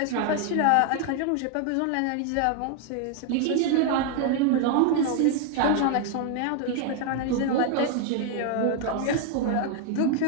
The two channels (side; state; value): both; different; correlation 0.00